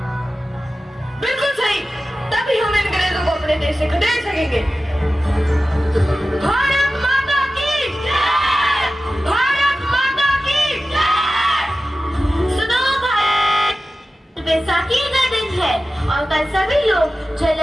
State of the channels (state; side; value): normal; both; correlation 0.95